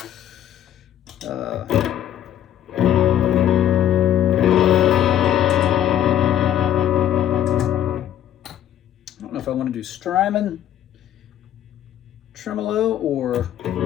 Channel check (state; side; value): quieter; right; 11.1 dB